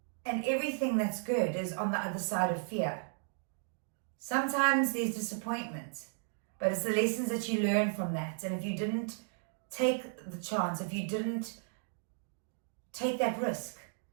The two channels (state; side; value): silent; left; digital silence